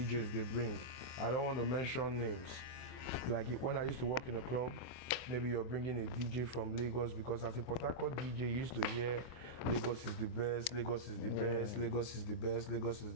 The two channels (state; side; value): late; right; 24 ms